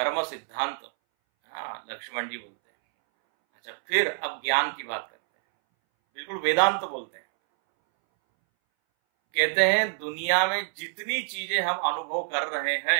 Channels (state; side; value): silent; left; 60 dB below the other